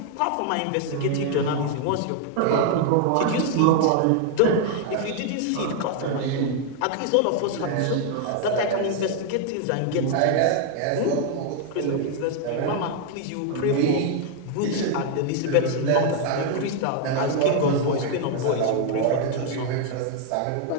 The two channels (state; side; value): different; both; correlation 0.00